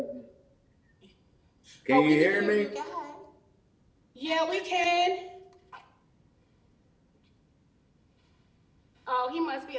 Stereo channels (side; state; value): both; identical; correlation 1.00